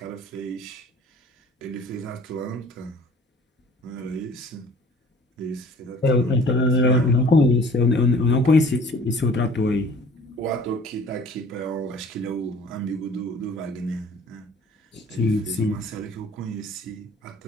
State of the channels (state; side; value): normal; both; correlation 0.50